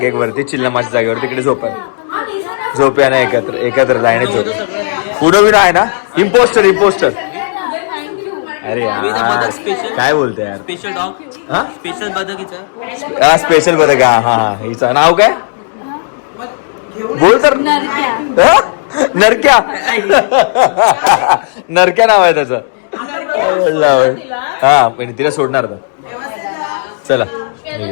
एक वरती चिल्लमाच्या जागेवर, तिकडे झोपूया ना एकत्र लाईनीत झोप. पुढं बिना आहे ना. इम्पोस्टर अरे यार काय बोलतोय यार. स्पेशल डॉग, हा स्पेशल बदकीचं. हा स्पेशल बदक. हा हिचं नाव काय बोल तर. हा? नरक्या नरक्या नाव आहे त्याचं. हा पण तिला सोडणार आता. चला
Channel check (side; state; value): right; silent; digital silence